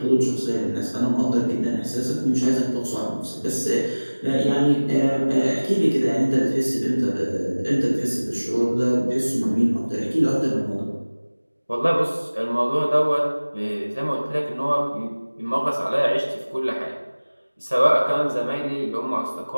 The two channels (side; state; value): both; inverted; correlation -1.00